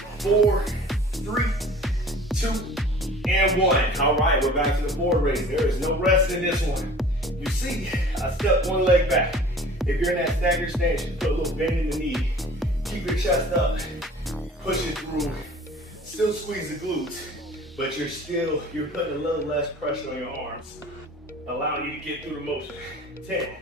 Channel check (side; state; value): both; normal; correlation 0.46